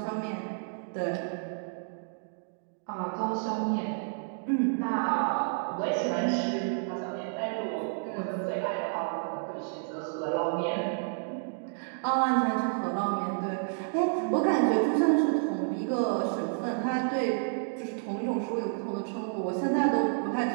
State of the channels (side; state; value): left; silent; digital silence